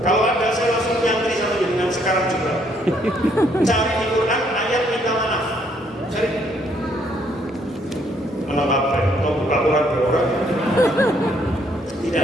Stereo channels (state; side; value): normal; both; correlation 0.68